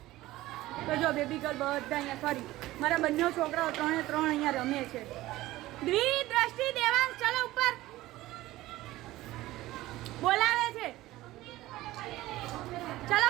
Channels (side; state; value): left; quieter; 17.0 dB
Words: તો જો બેબી ગર્લ બધા અહીંયા સોરી મારા બંને છોકરાઓ 3 એ 3 અહીંયા રમે છે. દ્વિદ્રષ્ટિ દેવાંશ ચલો ઉપર બોલાવે છે. ચલો